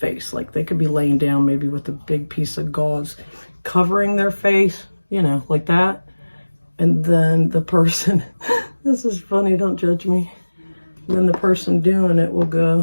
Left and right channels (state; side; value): inverted; both; correlation -1.00